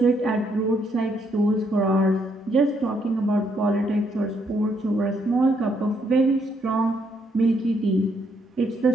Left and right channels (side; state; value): both; normal; correlation 0.73